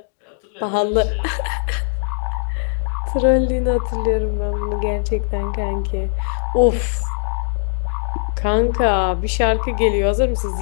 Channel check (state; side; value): silent; right; digital silence